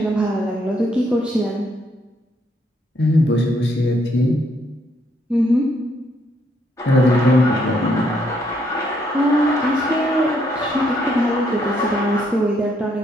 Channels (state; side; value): normal; both; correlation 0.72